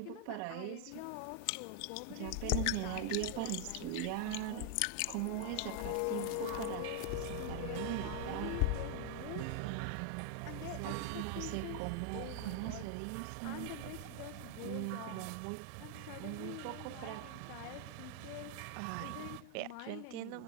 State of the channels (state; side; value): different; both; correlation 0.00